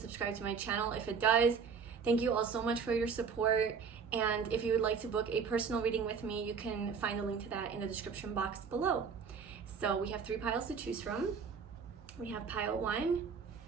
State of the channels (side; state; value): left; quieter; 6.0 dB